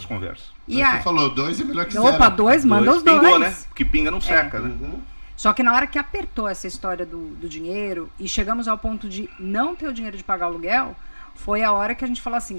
conversas. E Você aí, falou 2 é melhor que 0. opa, 2, manda os 2. Pingou, né? Porque pinga não seca, né? Só que na hora que apertou essa história do dinheiro e chegamos ao ponto de não ter o dinheiro de pagar o aluguel, foi a hora que a gente falou assim,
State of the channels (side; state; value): both; inverted; correlation -1.00